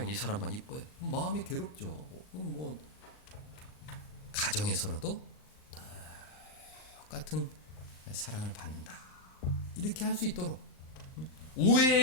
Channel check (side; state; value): right; late; 38 ms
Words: 이 사람만 이뻐요. 마음이 괴롭죠. 뭐 가정에서라도 똑같은 사랑을 받는다, 이렇게 할 수 있도록,